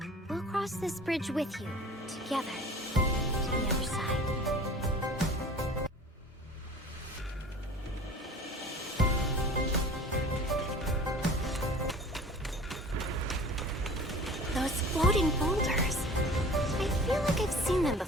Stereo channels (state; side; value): normal; both; correlation 0.43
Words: We'll cross this bridge with you, together, to the other side. Those floating boulders. I feel like I've seen them